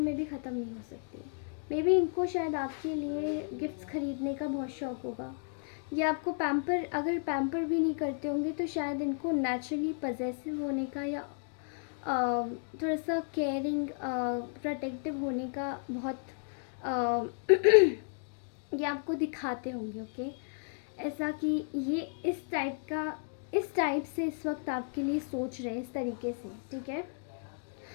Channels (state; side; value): silent; right; 56 dB below the other